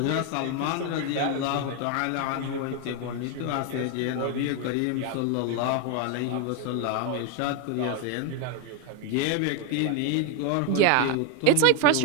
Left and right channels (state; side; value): different; both; correlation 0.01